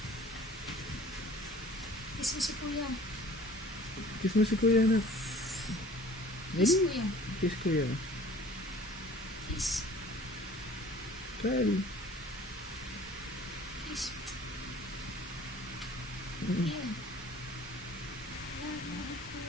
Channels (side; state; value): both; normal; correlation 0.48